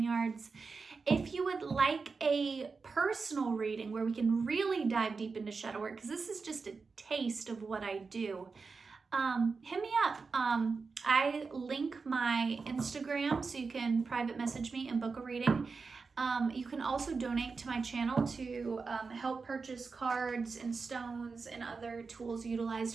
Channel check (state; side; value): quieter; left; 4.6 dB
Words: yards. If you would like a personal reading where we can really dive deep into shadow work, because this is just a taste of what I do, hit me up. I link my Instagram so you can private message me and book a reading. You can also donate to my channel to help purchase cards and stones and other tools